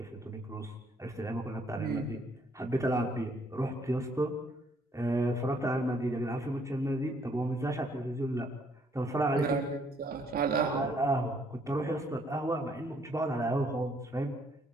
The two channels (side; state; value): both; normal; correlation 0.67